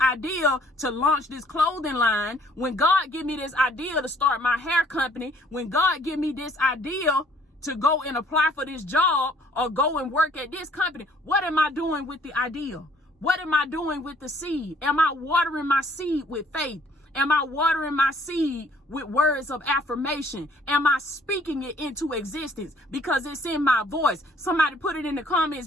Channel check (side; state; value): both; normal; correlation 0.60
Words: to launch this clothing line, when God give me this idea to start my hair company, when God give me this idea to go and apply for this job or go and work at this company. What am I doing with the idea? What am I doing with the seed? Am I watering my seed with faith? Am I watering my seed with words of affirmation? Am I speaking it into existence? Because it's in my voice. Somebody put it in the